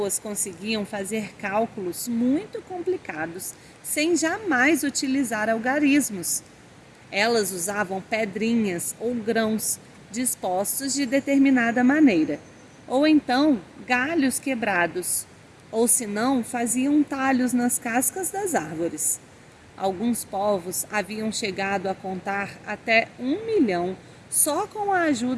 conseguiam fazer cálculos muito complicados sem jamais utilizar algarismos. Elas usavam pedrinhas ou grãos dispostos de determinada maneira, ou então galhos quebrados, ou se não, faziam talhos nas cascas das árvores. Alguns povos haviam chegado a contar até 1 milhão só com a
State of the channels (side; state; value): both; identical; correlation 1.00